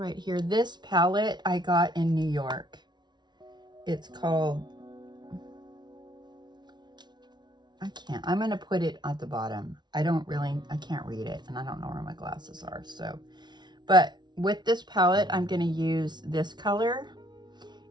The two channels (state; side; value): late; left; 0.20 ms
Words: here. This palette I got in New York. It's called, I'm going to put it at the bottom. I can't read it, and I don't know where my glasses are. So, but with this palette, I'm going to use this color,